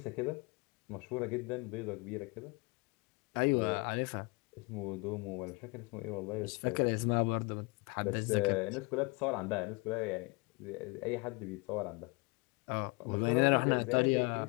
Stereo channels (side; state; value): right; quieter; 28.7 dB